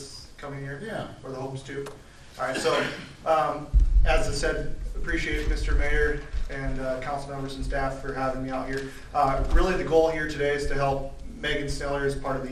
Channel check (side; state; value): both; identical; correlation 1.00